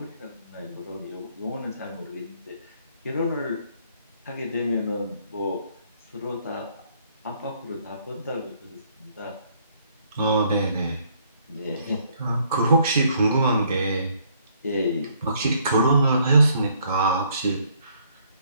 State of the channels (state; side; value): inverted; both; correlation -0.66